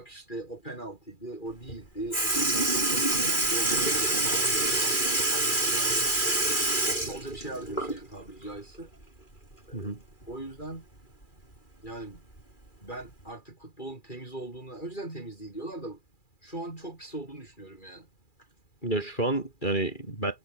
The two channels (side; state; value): right; late; 2.4 ms